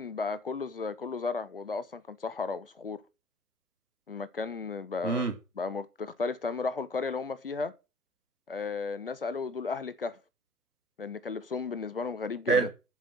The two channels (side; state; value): both; normal; correlation 0.50